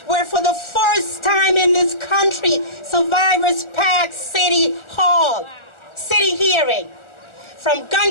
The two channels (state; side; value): late; right; 1.4 ms